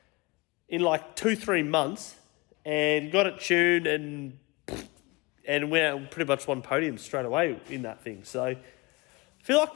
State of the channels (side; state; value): right; quieter; 25.2 dB